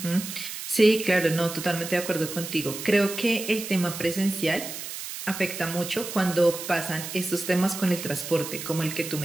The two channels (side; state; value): right; noise; hiss, 8 dB below the sound